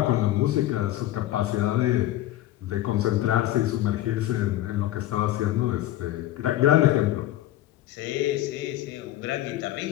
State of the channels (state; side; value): quieter; right; 14.5 dB